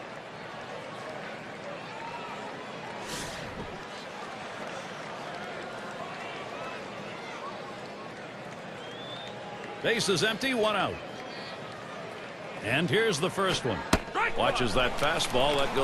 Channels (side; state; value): both; identical; correlation 1.00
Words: Base is empty, 1 out. And here's the first one. Watches that fastball. That